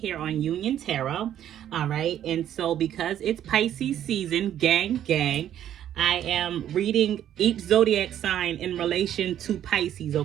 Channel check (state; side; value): quieter; left; 10.9 dB